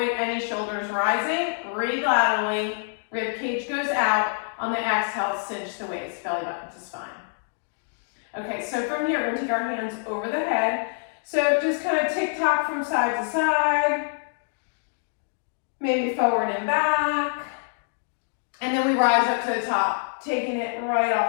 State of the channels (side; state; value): right; silent; digital silence